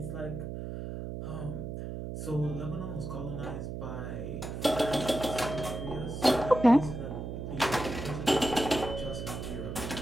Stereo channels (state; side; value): noise; right; hum, 6 dB below the sound